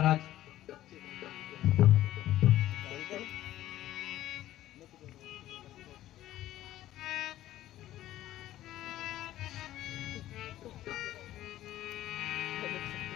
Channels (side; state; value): right; quieter; 14.0 dB